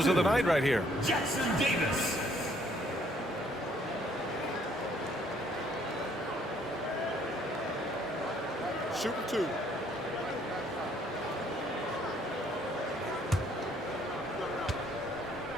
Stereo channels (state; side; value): normal; both; correlation 0.64